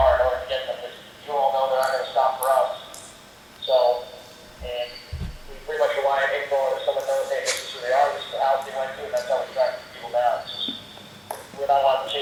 in order to get them, because you all know they're not gonna stop for us. So, and we pretty much rely on info, and if someone knows, hey, this is who they are, this is the house they went to, and that's how we track people down. It's just, we're not allowed to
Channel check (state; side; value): identical; both; correlation 1.00